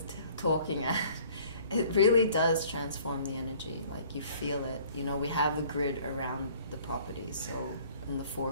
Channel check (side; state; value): both; inverted; correlation -0.54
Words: talking at. It really does transform the energy. Like, you feel it. You know, we have a grid around the property, so in the 4